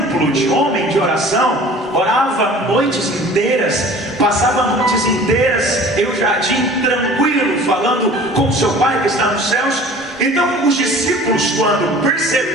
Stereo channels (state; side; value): normal; both; correlation 0.46